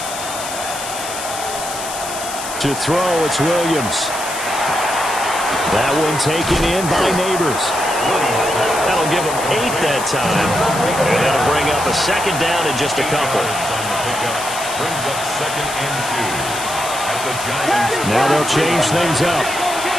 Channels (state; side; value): noise; left; hiss, 8 dB below the sound